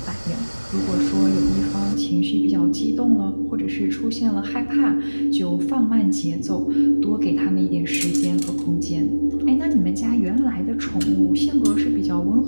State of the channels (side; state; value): both; inverted; correlation -1.00